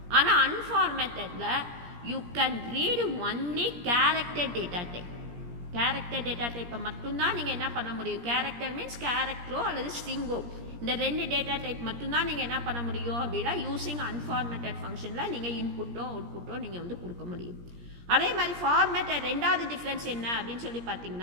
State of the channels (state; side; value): late; left; 17 ms